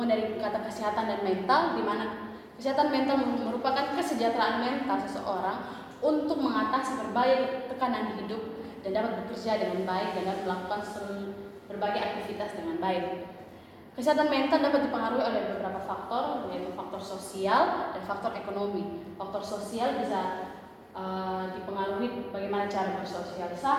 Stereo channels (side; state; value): both; identical; correlation 1.00